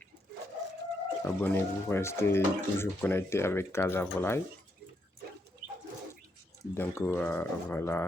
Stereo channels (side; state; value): both; normal; correlation 0.79